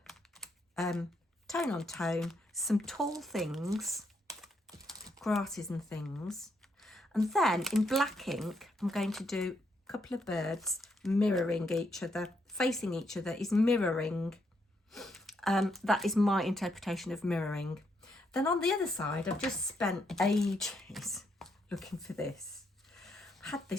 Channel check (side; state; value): both; normal; correlation 0.76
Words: tone on tone, some tall things, grasses and things. And then, in black ink, I'm going to do a couple of birds mirroring each other. Facing each other is mirroring. That is my interpretation of mirroring. Then on the other side, I've just spent ages looking for this. I've had